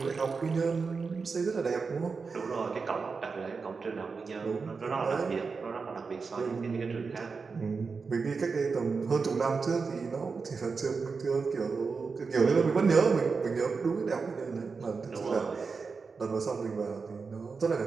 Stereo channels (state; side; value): quieter; left; 4.8 dB